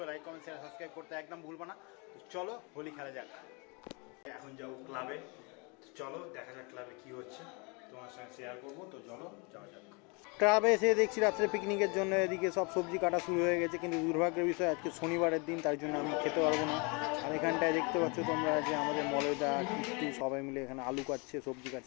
লাইক কমেন্ট শেয়ার সাবস্ক্রাইব করতে একদম ভুলবো না। তো চলো হোলি খেলা যাক। এখন যাবো ক্লাবে, চলো দেখা যাক ক্লাবে কী হচ্ছে, তোমার সঙ্গে শেয়ার করবো। তো চলো যাওয়া যাক। ক্লাবে এসে দেখছি রাত্রে পিকনিকের জন্য এদিকে সব সবজি কাটা শুরু হয়ে গেছে, কিন্তু দুর্ভাগ্যের বিষয় আজকে শনিবারের দিন, তার জন্য আমি খেতে পারবো না। আর এখানটায় দেখতে পাচ্ছ তোমরা যে আমাদের মলয়দা কিট্টু সবাই মিলে এখানে আলু কাটছে, সবজি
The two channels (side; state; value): right; quieter; 31.1 dB